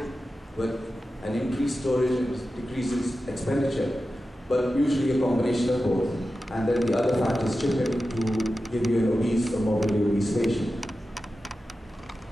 with an increased storage and decreases expenditure, but usually a combination of both. And then the other factors chip in to give you an obese or morbidly obese patient.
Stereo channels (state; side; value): normal; both; correlation 0.93